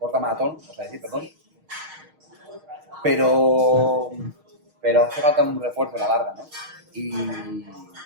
maratón, o sea, decir, perdón, pero hace falta un refuerzo en la larga, ¿no? Y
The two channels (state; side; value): late; left; 6.4 ms